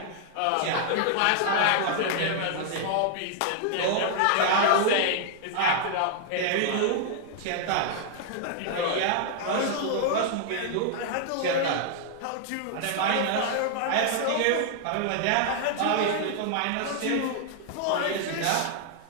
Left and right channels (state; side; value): different; both; correlation -0.01